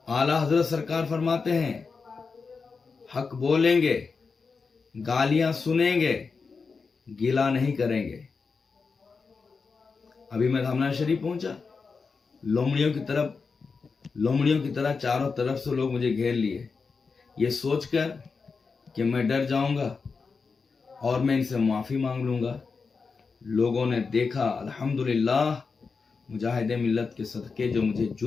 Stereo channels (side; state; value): right; quieter; 4.9 dB